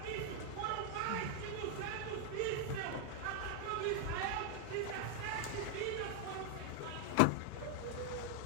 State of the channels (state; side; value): different; both; correlation 0.00